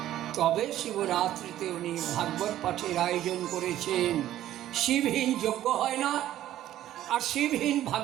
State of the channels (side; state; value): left; quieter; 12.9 dB